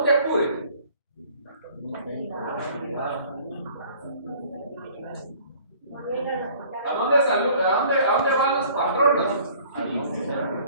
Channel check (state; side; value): inverted; both; correlation -0.53